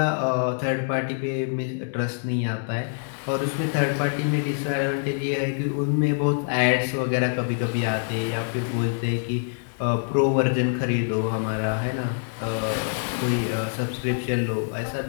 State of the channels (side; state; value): right; silent; digital silence